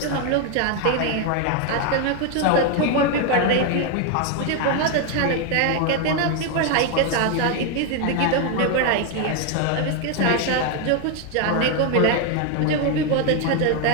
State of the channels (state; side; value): different; both; correlation 0.01